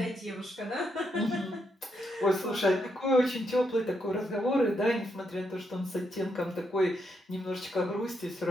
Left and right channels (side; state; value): both; normal; correlation 0.79